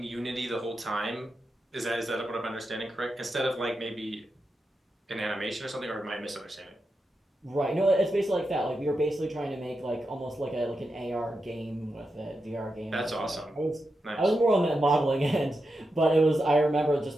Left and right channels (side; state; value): both; normal; correlation 0.88